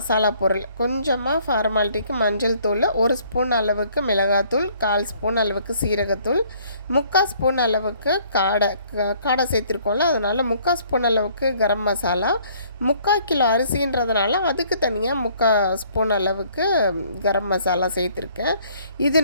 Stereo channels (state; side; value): inverted; both; correlation -0.61